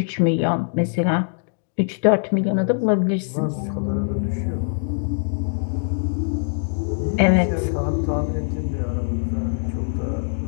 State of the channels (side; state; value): right; silent; digital silence